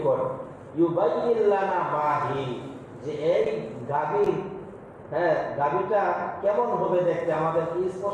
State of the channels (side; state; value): both; identical; correlation 1.00